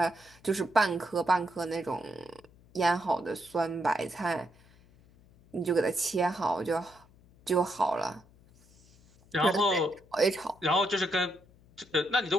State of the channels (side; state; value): left; noise; hum, 27 dB below the sound